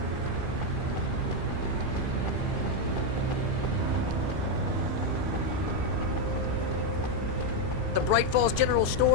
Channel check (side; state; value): left; late; 2.5 ms